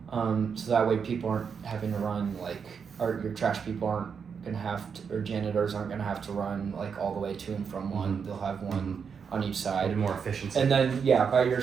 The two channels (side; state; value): left; quieter; 6.4 dB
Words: So that way people aren't having to run or your trash people aren't gonna have to, or janitors aren't gonna have to run like all the way to and from one. Mhm. They'll have one on each side. Maybe more efficiency. And then by your